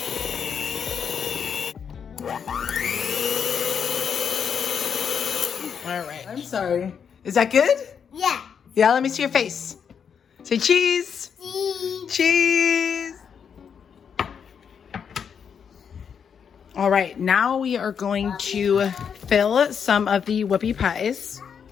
All right. I'm sorry. Is that good? Yeah. Yeah, let me see your face. Say cheese. Cheese. Cheese. All right, now we are going to fill some of the whoopie pies.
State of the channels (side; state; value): right; quieter; 7.2 dB